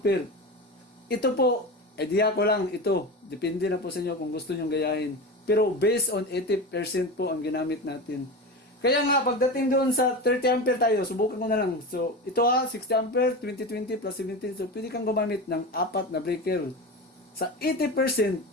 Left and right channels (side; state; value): both; normal; correlation 0.25